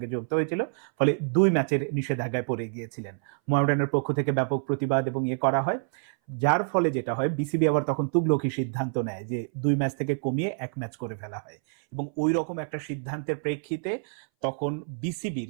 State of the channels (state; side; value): silent; left; 59 dB below the other